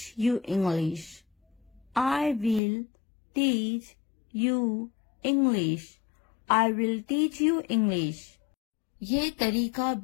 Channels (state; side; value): drops out; right; at 2.6 s